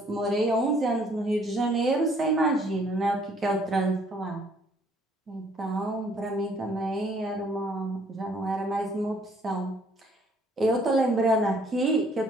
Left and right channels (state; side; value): normal; both; correlation 0.62